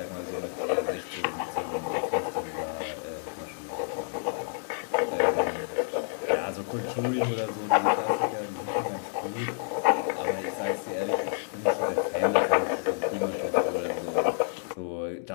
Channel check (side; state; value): right; silent; 59 dB below the other